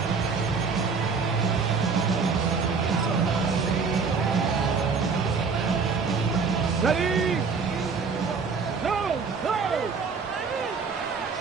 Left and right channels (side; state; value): left; quieter; 5.1 dB